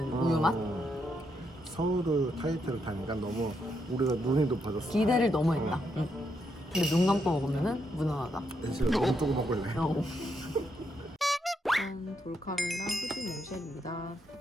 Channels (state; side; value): normal; both; correlation 0.79